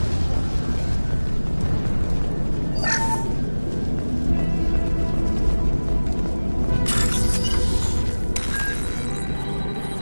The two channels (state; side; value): inverted; both; correlation -1.00